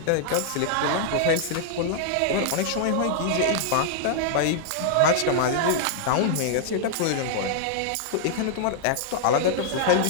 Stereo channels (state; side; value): different; both; correlation -0.01